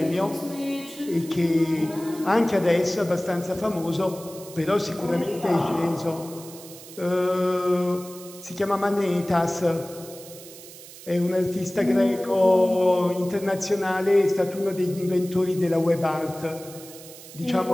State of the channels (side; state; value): right; noise; hiss, 17 dB below the sound